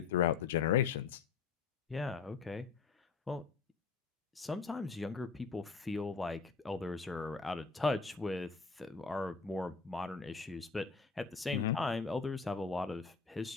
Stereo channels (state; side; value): quieter; right; 5.1 dB